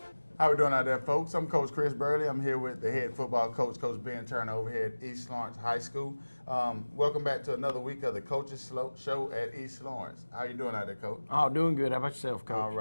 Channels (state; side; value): inverted; both; correlation -1.00